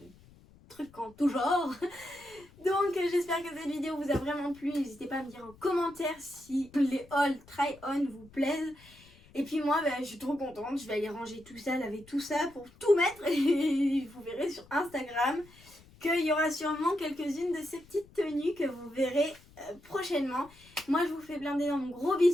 trucs en tout genre. Donc j'espère que cette vidéo vous a vraiment plu. N'hésitez pas à me dire en commentaire si les haul try-on vous plaisent. Et puis moi je suis trop contente, je vais aller ranger tout ça, laver tout ça pour tout mettre. Et vous verrez sur Instagram qu'il y aura sûrement quelques-unes de ces petites tenues que vous verrez prochainement. Moi je vous fais plein d'énormes gros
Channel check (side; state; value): left; noise; rumble, 25 dB below the sound